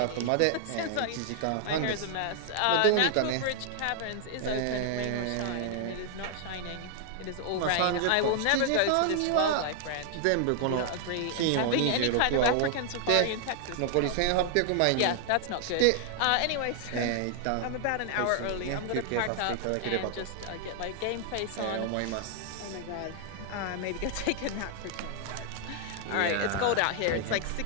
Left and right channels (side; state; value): both; different; correlation 0.00